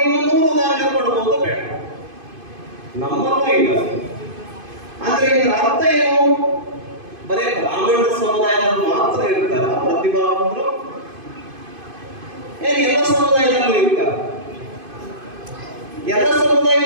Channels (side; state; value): left; late; 2.5 ms